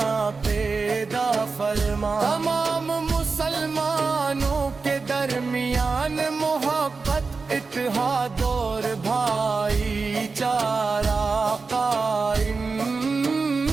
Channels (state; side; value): quieter; left; 4.4 dB